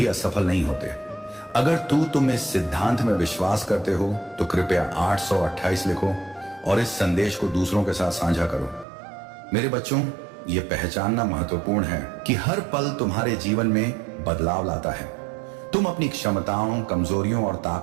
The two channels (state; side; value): drops out; left; at 8.8 s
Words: असफल नहीं होते। अगर तुम इस सिद्धांत में विश्वास करते हो तो कृपया 828 लिखो और इस संदेश को दूसरों के साथ साझा करो। मेरे बच्चों, यह पहचानना महत्वपूर्ण है कि हर पल तुम्हारे जीवन में बदलाव लाता है। तुम अपनी क्षमताओं, कमजोरियों और